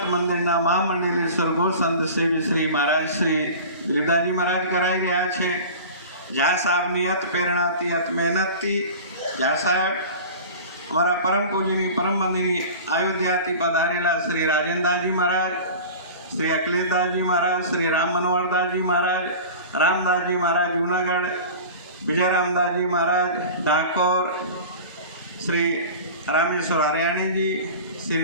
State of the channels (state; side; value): inverted; both; correlation -0.36